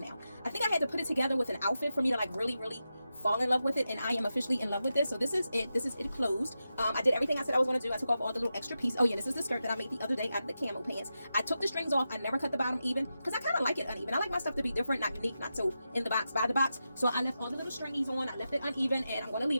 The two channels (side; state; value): both; inverted; correlation -0.90